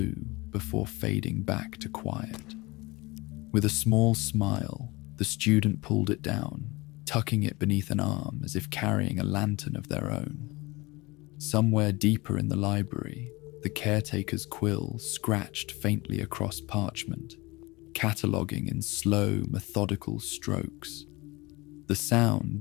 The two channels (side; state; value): right; quieter; 23.1 dB